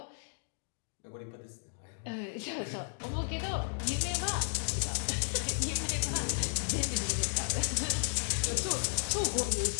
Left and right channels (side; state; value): right; silent; digital silence